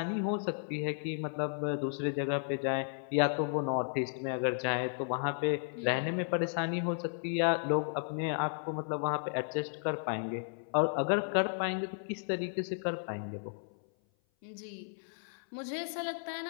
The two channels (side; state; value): right; silent; 55 dB below the other